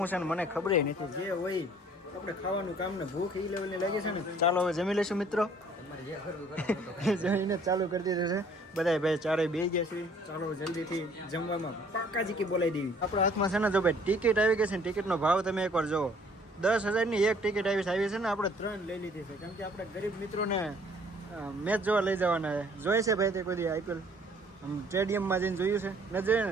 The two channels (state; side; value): normal; both; correlation 0.58